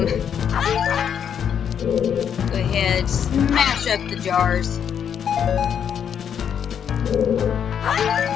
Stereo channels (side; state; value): right; quieter; 8.2 dB